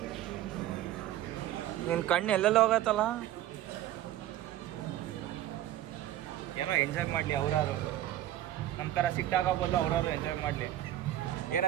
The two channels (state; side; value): quieter; left; 13.2 dB